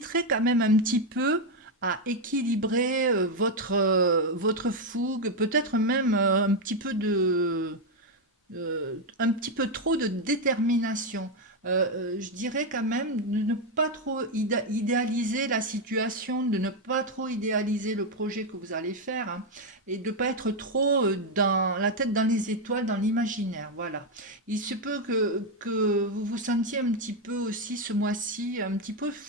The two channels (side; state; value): both; normal; correlation 0.04